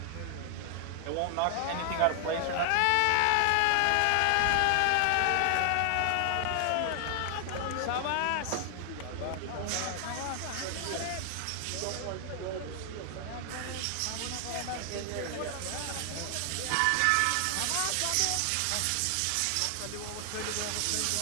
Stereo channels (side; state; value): both; different; correlation 0.00